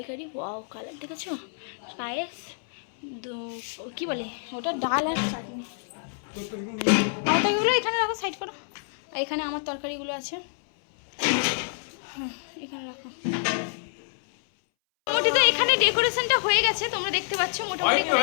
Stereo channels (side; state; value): right; silent; 60 dB below the other